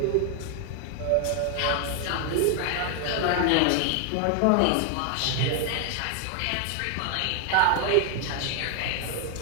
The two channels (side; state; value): both; different; correlation 0.00